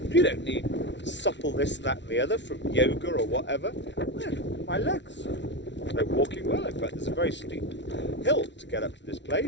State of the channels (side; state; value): right; late; 0.52 ms